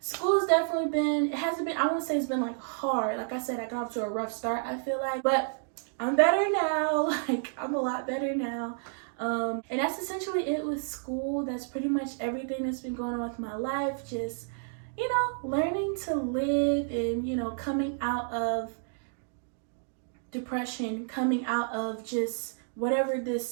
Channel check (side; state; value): left; silent; digital silence